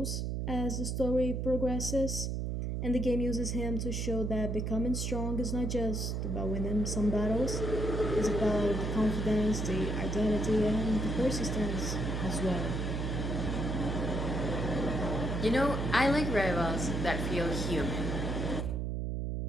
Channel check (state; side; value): noise; right; hum, 1 dB below the sound